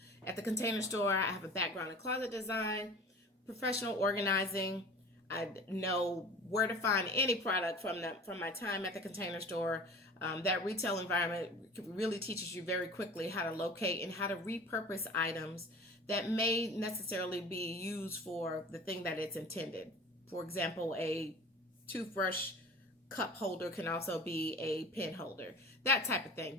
Store. I have a background in closet design, professional organizing. I know where to find any product from my time at the Container Store. That retail environment really teaches you very quickly how to locate and how to repurpose items that may necessarily be used for the thing that it's intended. For example, a toothbrush cup holder can also be a pen holder, that type of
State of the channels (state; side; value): normal; both; correlation 0.40